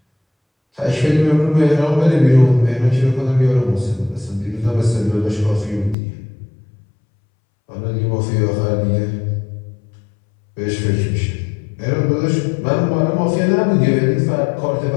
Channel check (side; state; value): right; drops out; at 6.0 s